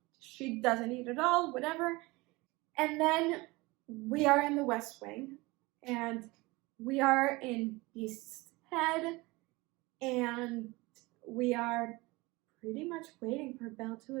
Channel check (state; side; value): quieter; left; 22.8 dB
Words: she doesn't eat at all, whatever. And then we are in the West Wing, and we are in Beast's head, and we are pretty much waiting for Belle to